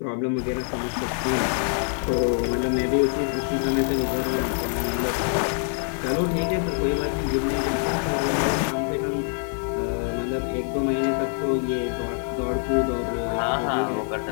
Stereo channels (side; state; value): right; silent; 59 dB below the other